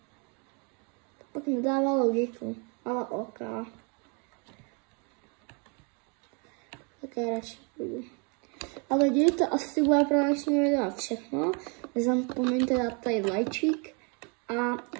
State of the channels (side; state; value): left; quieter; 34.8 dB